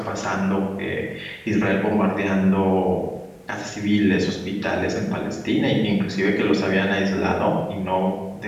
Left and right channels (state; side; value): identical; both; correlation 1.00